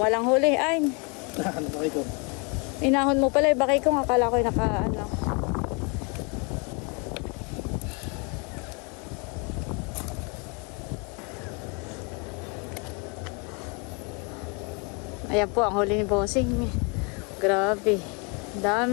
huli. Ay, Ano ba ito? inahon mo pala. Bakay kong akala ko ano. Ayan po ang huli ni Bossing. Grabe.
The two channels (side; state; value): right; quieter; 32.9 dB